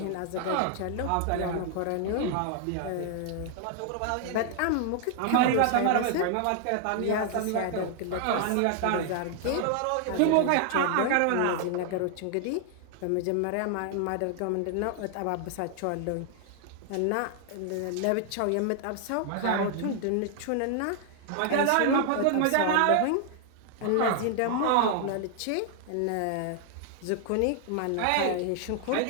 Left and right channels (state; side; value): different; both; correlation 0.00